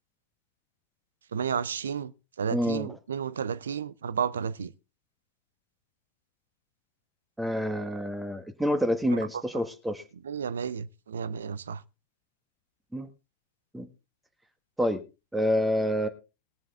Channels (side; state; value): both; normal; correlation 0.42